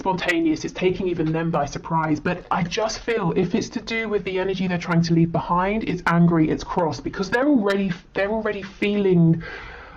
it's taking even them by surprise. But I just feel if it's to do with the energy they're trying to leave behind, it's angry, it's cross, because they're already feeling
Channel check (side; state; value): both; identical; correlation 1.00